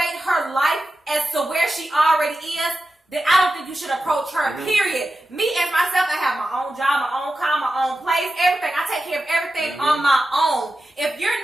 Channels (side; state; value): both; normal; correlation 0.92